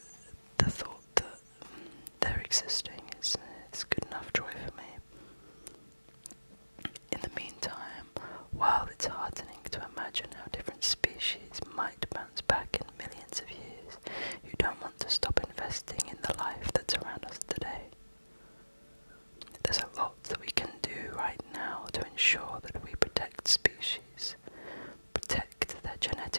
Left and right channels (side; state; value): both; inverted; correlation -1.00